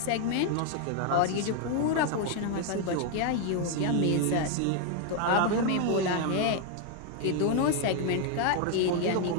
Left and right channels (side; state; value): both; different; correlation 0.01